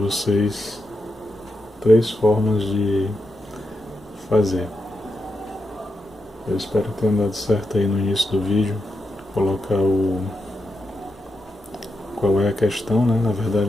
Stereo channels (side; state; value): both; normal; correlation 0.86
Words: 3 formas de fazer. Eu espero que tenha dado certo aí no início do vídeo, colocar qual é a questão, né? Na verdade